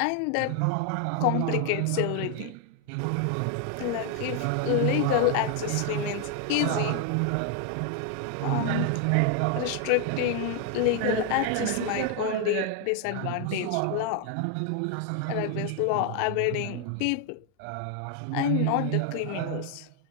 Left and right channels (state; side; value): different; both; correlation 0.00